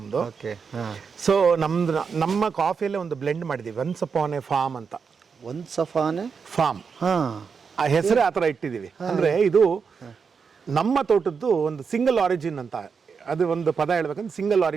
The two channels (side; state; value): left; quieter; 5.8 dB